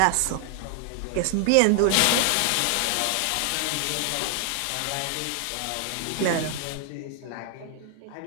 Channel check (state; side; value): different; both; correlation 0.00